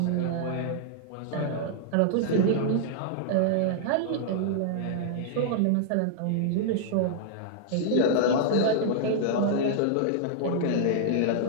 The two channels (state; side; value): different; both; correlation -0.01